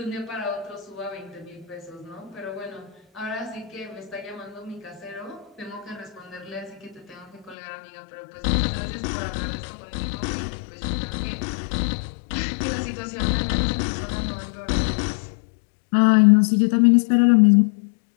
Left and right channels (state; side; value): drops out; right; at 7.6 s